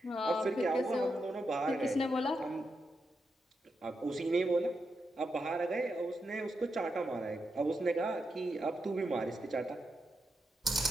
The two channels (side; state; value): both; normal; correlation 0.85